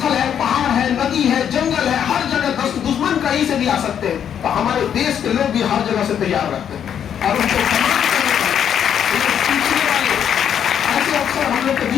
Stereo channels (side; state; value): right; quieter; 8.8 dB